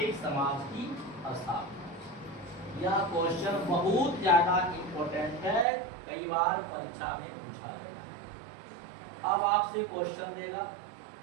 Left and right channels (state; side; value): drops out; left; at 5.7 s